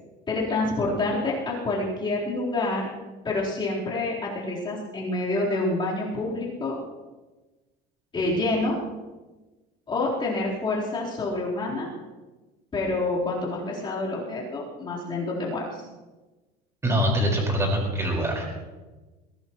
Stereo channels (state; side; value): normal; both; correlation 0.40